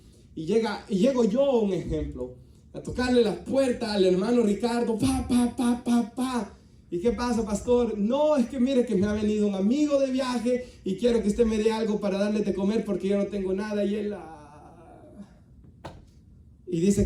y llego yo, un ejemplo, a tocarle la puerta al hermano Ricardo, pa. ¿Y qué pasa, pastor? No, es que mire que me ha venido un amigo de viaje y quiero que usted me dé algo para darle de comer porque yo no tengo nada. Y él y dice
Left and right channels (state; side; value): identical; both; correlation 1.00